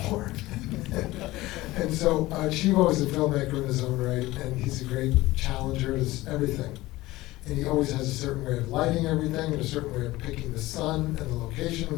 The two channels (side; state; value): right; quieter; 18.3 dB